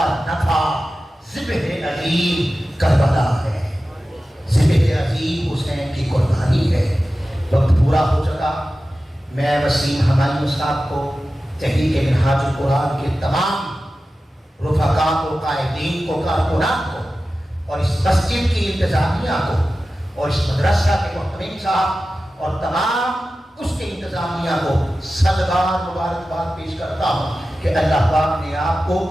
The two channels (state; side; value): normal; both; correlation 0.94